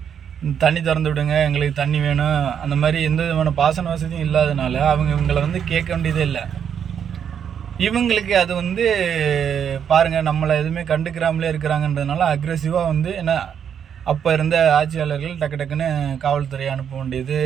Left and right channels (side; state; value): left; quieter; 8.2 dB